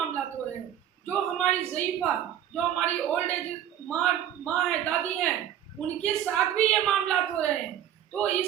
हो रहे हैं। जो हमारी ज़ईफ़ा, जो हमारी ओल्ड एज माँ है, दादी हैं, उनके साथ भी ये मामला हो रहे हैं। तो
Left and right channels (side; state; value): left; quieter; 10.7 dB